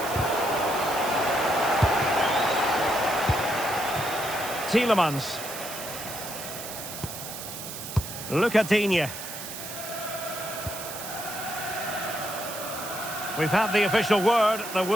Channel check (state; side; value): noise; right; hiss, 9 dB below the sound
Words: Tielemans. Lucadinha. We've had the official word. There